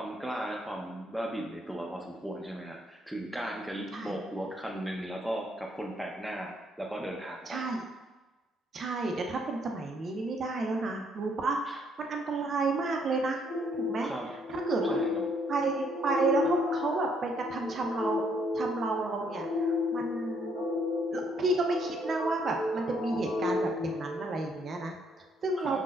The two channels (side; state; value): both; normal; correlation 0.70